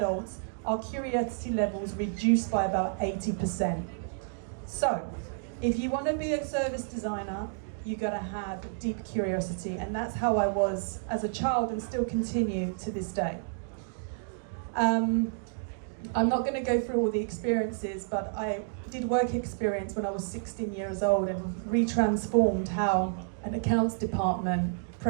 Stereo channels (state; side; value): silent; left; digital silence